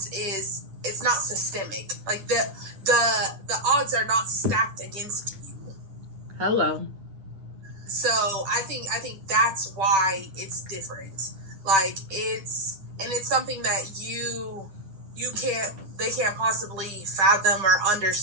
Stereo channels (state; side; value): late; left; 10 ms